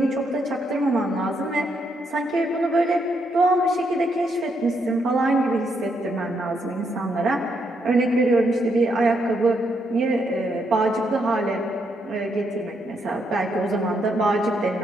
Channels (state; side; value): normal; both; correlation 0.77